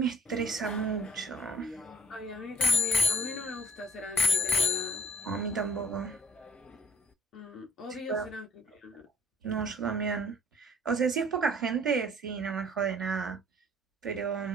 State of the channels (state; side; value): normal; both; correlation 0.57